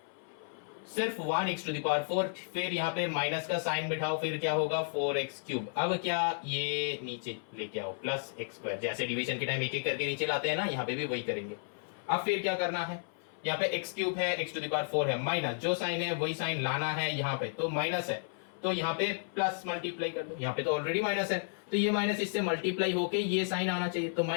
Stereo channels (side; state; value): right; silent; 56 dB below the other